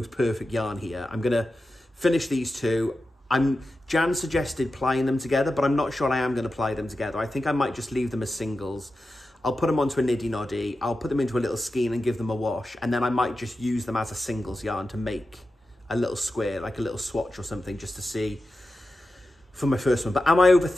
perfect yarn here. I'm gonna finish these two. Jan suggested plying them together, but I'm not sure I am going to ply them together. I think I might just leave them as singles. I'll put them onto a niddy noddy. I'll put them into a little skein and give them a wash. And then I might just use them as a singles yarn to make a little square, like a little swatch or something, just to see for my first one. But am I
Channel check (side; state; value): both; normal; correlation 0.92